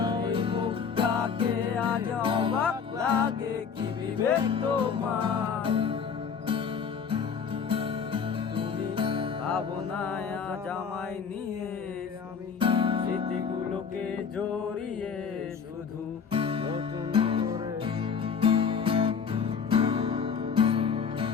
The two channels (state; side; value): quieter; right; 6.5 dB